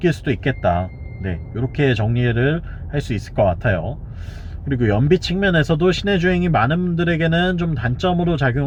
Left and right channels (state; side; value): identical; both; correlation 1.00